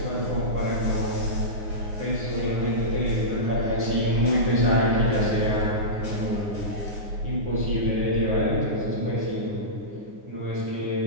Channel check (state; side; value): late; left; 9.7 ms